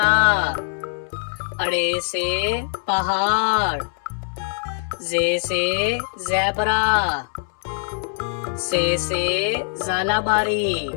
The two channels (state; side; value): silent; right; 64 dB below the other